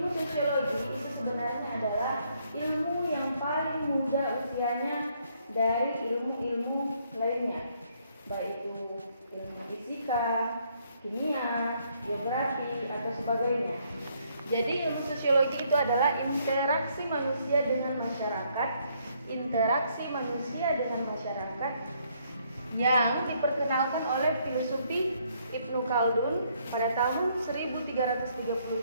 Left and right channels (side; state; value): both; inverted; correlation -0.70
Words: sosiologi itu sebenarnya adalah ilmu yang paling muda usianya dari ilmu-ilmu lainnya, baik itu ilmu fisika, kimia, geografi, atau sebagainya. Jadi ilmu sosiologi itu adalah interaksi manusia dengan masyarakat yang diperkenalkan oleh filosofi Ibnu Khaldun pada tahun